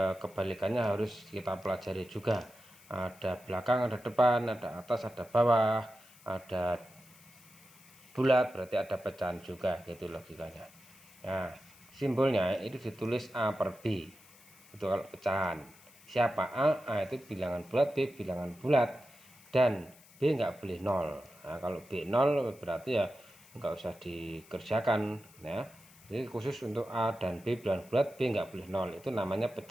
kebalikannya harus kita pelajari juga. Ada belakang, ada depan, ada atas, ada bawah, ada bulat berarti ada pecahan juga, gitu logikanya. Nah, simbolnya itu ditulis A per B. Itu kalau pecahan. Siapa A itu bilangan bulat, B bilangan bulat, dan B nggak boleh 0. Nah, kalau B 0 berarti ya nggak usah dikerjakan ya. Jadi khusus untuk A dan B bilangan bulat, B nggak boleh 0. Itu namanya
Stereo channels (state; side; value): noise; left; hiss, 24 dB below the sound